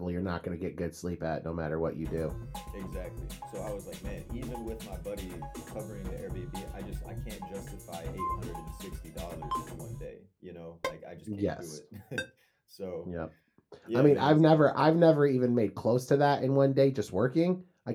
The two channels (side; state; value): both; identical; correlation 1.00